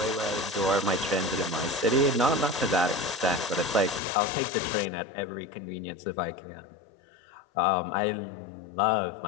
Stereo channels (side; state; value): right; drops out; at 4.0 s